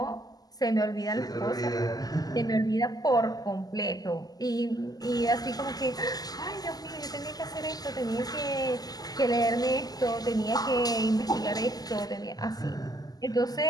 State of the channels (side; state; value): right; late; 0.18 ms